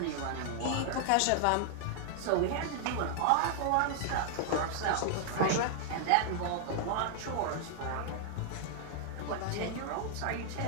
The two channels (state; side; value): different; both; correlation -0.01